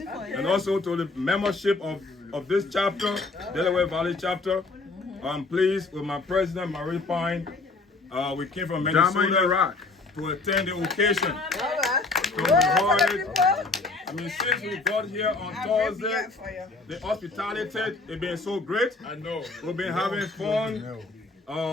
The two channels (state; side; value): quieter; right; 3.6 dB